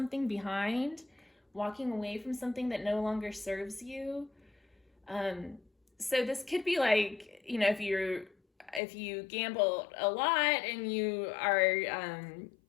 behind, walking away from something that no longer serves you. So this could be like, you know, if you gamble a lot and you are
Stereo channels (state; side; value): drops out; right; at 8.8 s